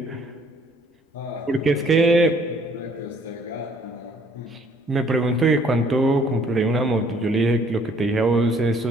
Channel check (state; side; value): normal; both; correlation 0.61